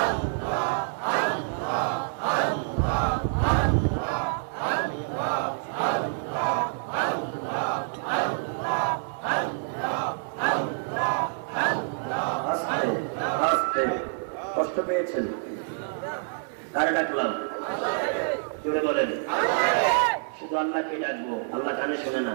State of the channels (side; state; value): left; silent; digital silence